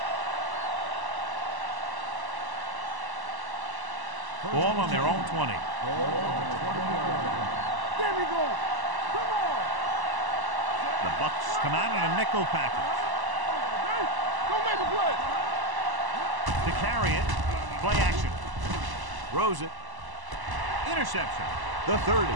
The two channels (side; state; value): left; late; 1.0 ms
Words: Ball on their own 20. There we go. Come on. The Bucs come out in a nickel package. Don't make a play. To carry it, play action. Throws it. Interception. The 30.